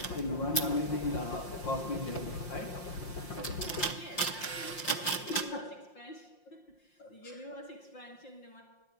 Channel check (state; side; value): late; right; 5.7 ms